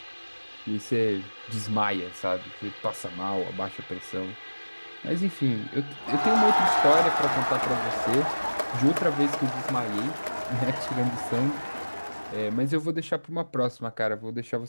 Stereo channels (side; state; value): both; inverted; correlation -1.00